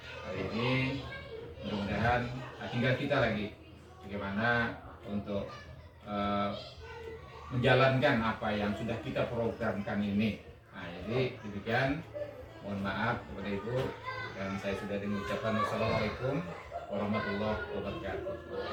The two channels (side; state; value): both; identical; correlation 1.00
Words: hari ini. Mudah-mudahan tinggal kita lagi bagaimana untuk menjalankan apa yang sudah kita programkan ini. Nah, jadi demikian. Mohon maaf kepada Ibu, dan saya sudah mengucapkan wassalamualaikum warahmatullahi wabarakatuh.